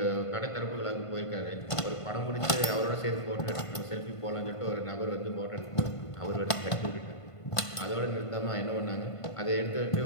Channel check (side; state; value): right; late; 1.5 ms